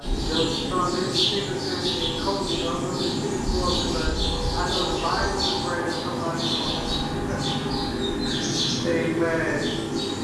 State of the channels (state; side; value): identical; both; correlation 1.00